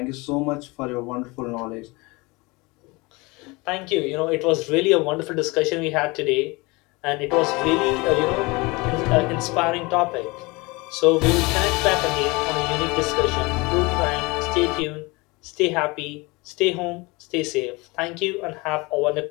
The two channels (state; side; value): quieter; right; 25.0 dB